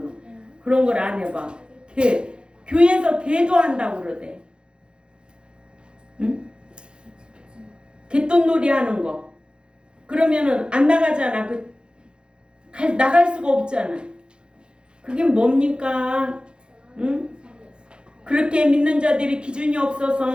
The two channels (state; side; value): late; left; 0.051 ms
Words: 그런 걸 안 해봐. 교회에서 개도 한다고 그러대. 응? 개똥놀이 하는 거. 그러면은 안 나가잖아. 나갈 수가 없잖아. 그게 뭡니까? 그렇게 믿는 자들이 기준이